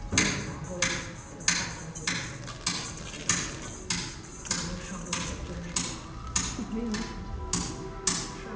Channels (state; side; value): identical; both; correlation 1.00